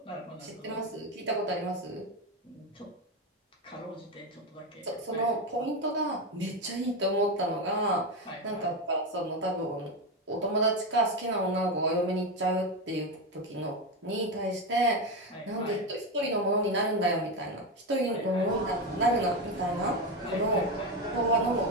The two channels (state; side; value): normal; both; correlation 0.13